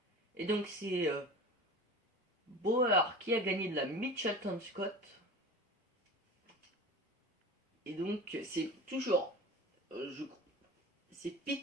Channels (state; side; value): normal; both; correlation 0.34